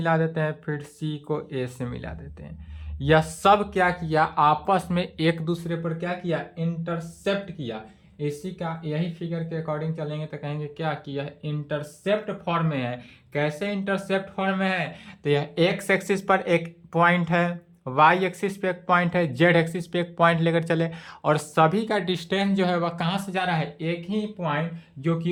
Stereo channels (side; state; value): both; identical; correlation 1.00